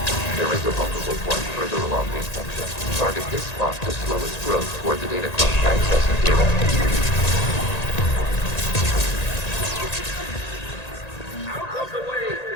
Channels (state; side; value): late; right; 1.9 ms